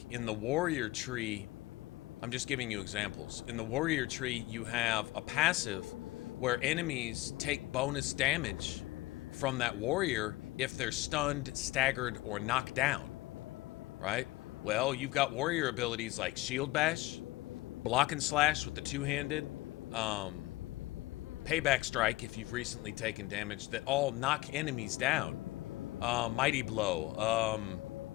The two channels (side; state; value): right; quieter; 19.5 dB